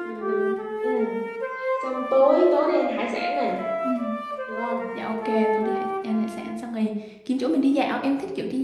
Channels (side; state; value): both; identical; correlation 1.00